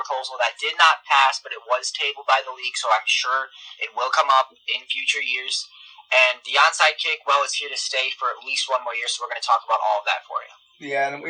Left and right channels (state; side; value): identical; both; correlation 1.00